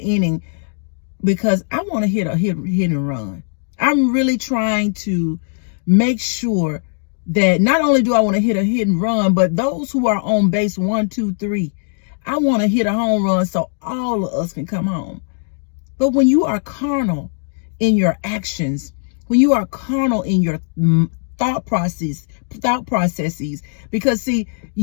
because I want to hit and run. I'm really trying to make sure that not only do I want to hit a hit and run, but those who are on base 1, 2, 3, I want to hit a home run so all of us can come home. But when you are carnal in your actions, when you are carnal in your thought processes, because see,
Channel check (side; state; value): right; silent; 66 dB below the other